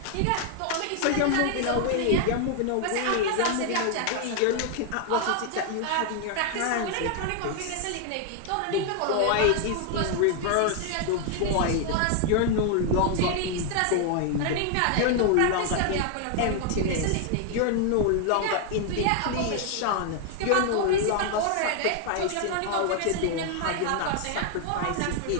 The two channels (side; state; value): both; different; correlation 0.00